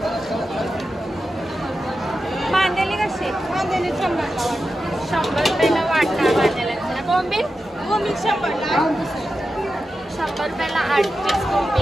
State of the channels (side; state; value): both; normal; correlation 0.91